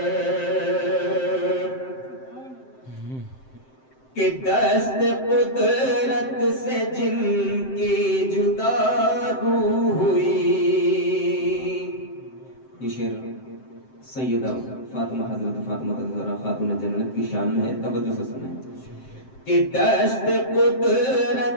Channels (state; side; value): late; right; 7.7 ms